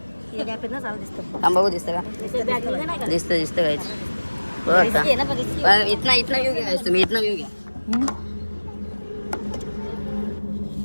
बघू दिसतं का, दिसतं काहीच. इथना व्ह्यू घ्या तुम्ही, इथना व्ह्यू घ्या.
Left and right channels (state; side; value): inverted; both; correlation -1.00